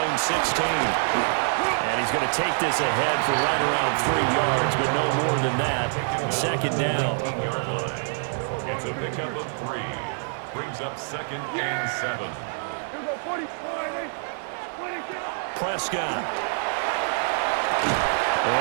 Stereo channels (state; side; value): silent; left; digital silence